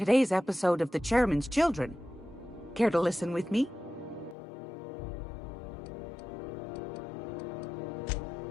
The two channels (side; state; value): right; drops out; at 4.4 s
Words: episode of The Chairman's Children. Care to listen with me?